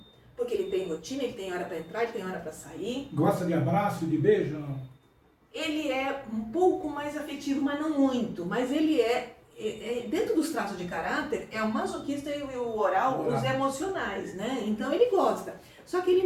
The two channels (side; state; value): both; identical; correlation 1.00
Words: Porque ele tem rotina, ele tem hora para entrar, ele tem hora para sair. Gosta de abraço, de beijo? Não? Ele é um pouco mais afetivo, mas não muito. Mas ele é dentro dos traços de caráter, é o masoquista e o oral, os emocionais, né? Então ele gosta. Só que ele